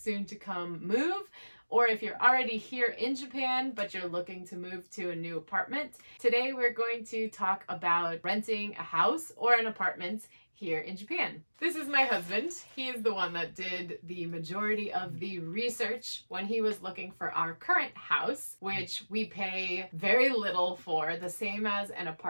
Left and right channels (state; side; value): inverted; both; correlation -1.00